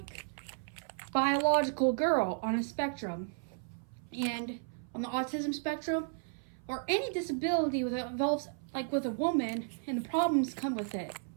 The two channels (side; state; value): left; silent; 55 dB below the other